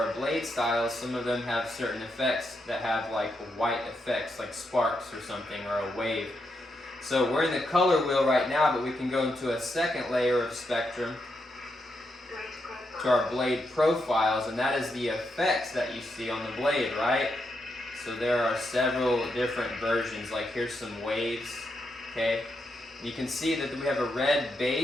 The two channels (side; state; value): both; normal; correlation 0.82